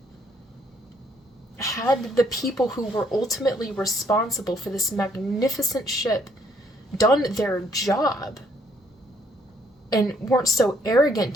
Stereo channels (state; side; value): normal; both; correlation 0.67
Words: Had the people who were ultimately responsible for this magnificent ship done their job and weren't so arrogant